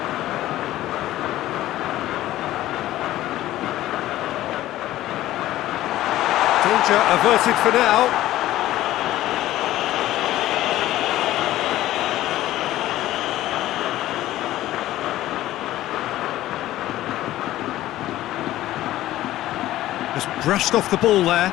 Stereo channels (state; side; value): quieter; right; 14.8 dB